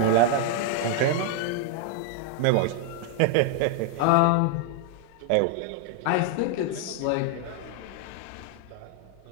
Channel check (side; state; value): both; different; correlation 0.00